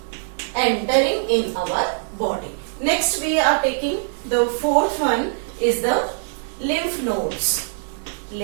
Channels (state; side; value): silent; left; 64 dB below the other